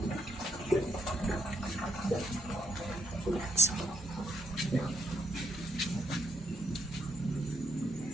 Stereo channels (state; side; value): normal; both; correlation 0.75